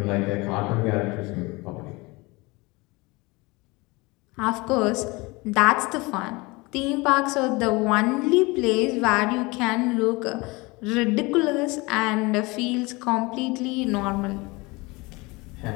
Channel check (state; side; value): quieter; right; 24.4 dB